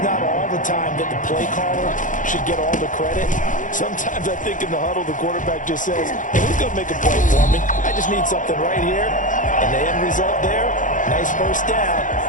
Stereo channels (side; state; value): right; late; 0.37 ms